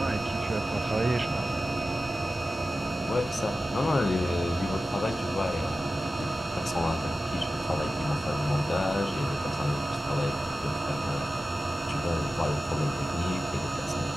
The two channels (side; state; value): both; normal; correlation 0.94